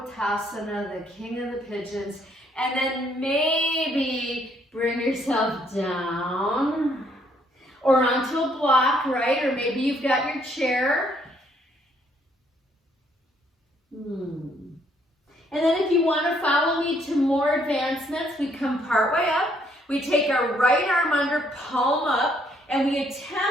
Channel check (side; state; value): both; normal; correlation 0.68